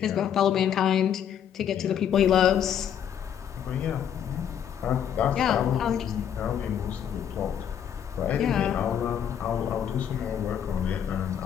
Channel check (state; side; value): quieter; right; 9.1 dB